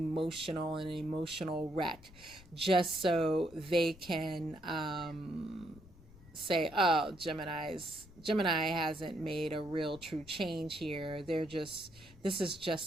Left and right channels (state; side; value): noise; left; rumble, 21 dB below the sound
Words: and an emotional wreck, just so they can say, oh, Gemini hasn't made a real true change here. This is